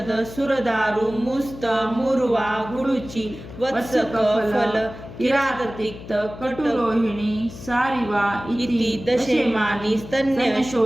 सुरदारु मुस्त मूर्वा गुडुची वत्सक फल किराततिक्त कटुरोहिणी सारिवा इति दशेमानि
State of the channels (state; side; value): noise; left; hum, 14 dB below the sound